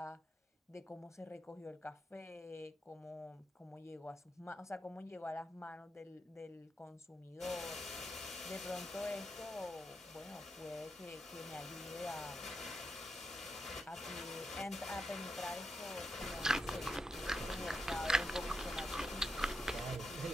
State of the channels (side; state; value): both; normal; correlation 0.84